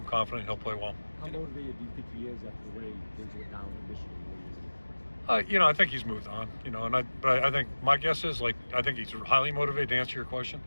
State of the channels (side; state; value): both; inverted; correlation -1.00